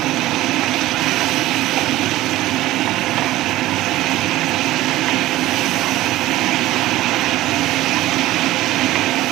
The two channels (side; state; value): left; quieter; 16.2 dB